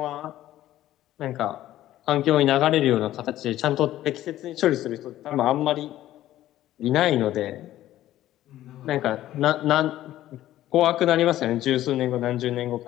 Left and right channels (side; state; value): right; quieter; 13.9 dB